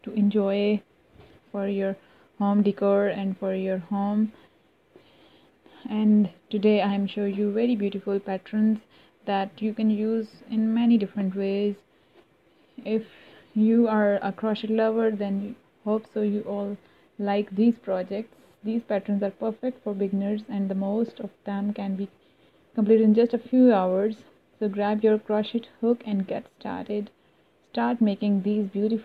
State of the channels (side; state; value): both; identical; correlation 1.00